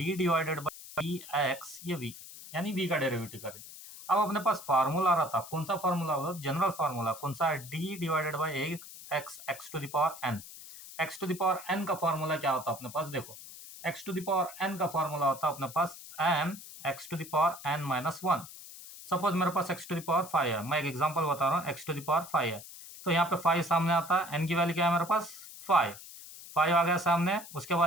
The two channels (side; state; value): left; noise; hiss, 15 dB below the sound